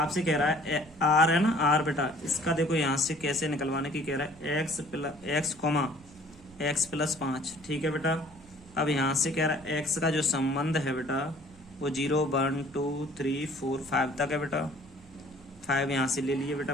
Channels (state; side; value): noise; right; hum, 25 dB below the sound